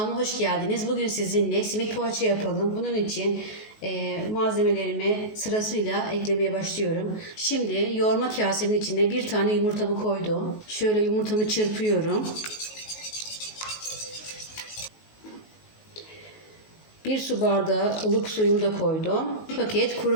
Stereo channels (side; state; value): right; late; 19 ms